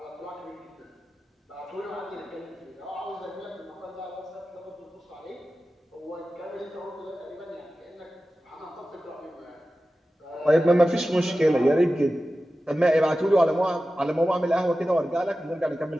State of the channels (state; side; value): normal; both; correlation 0.94